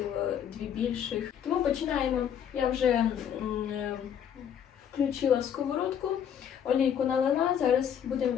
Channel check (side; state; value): right; quieter; 8.8 dB